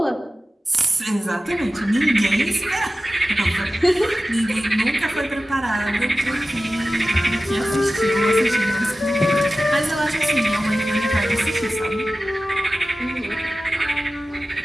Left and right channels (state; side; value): normal; both; correlation 0.95